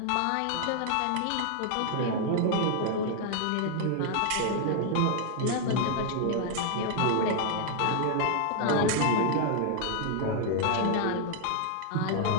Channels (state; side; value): different; both; correlation 0.00